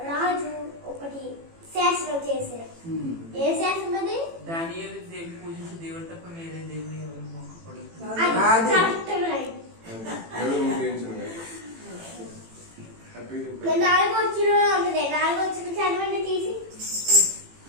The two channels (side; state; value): left; late; 18 ms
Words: రాజు ఒకటి శాస్త్రం చేశారు. ఏ శాస్త్రం అది? దేవుడు తప్ప వేరే దేవుడు ఎవరు మొక్కకూడదు. నాలుగు వచ్చిన ఉంటుంది. నాలుగు వచ్చిన చదవండి తీసి.